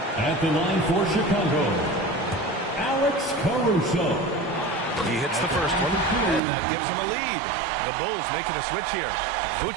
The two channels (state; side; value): drops out; left; at 6.4 s